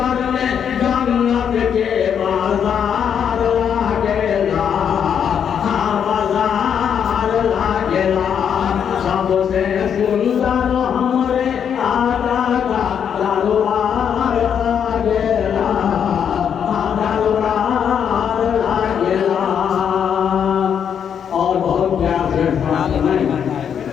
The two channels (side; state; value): right; quieter; 8.0 dB